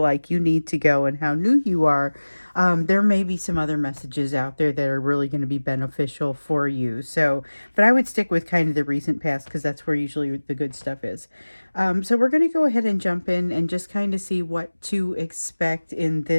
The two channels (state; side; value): inverted; both; correlation -1.00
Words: you need to go and how new you are, there may be some other messages out there that are really going to be beneficial for you. So, but I would stick with kind of the recent past because that's where usually the good stuff is. So we're going to go ahead and jump in and just kind of see what to expect in